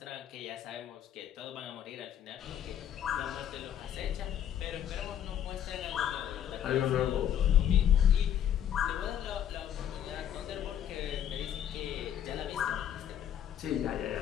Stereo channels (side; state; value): right; quieter; 10.0 dB